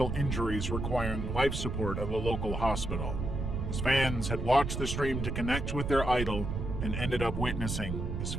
injuries requiring life support at a local hospital. His fans had watched the stream to connect with their idol and ended up witnessing his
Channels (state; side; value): noise; right; rumble, 3 dB below the sound